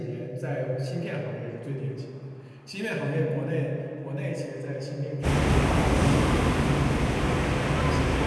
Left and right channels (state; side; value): identical; both; correlation 1.00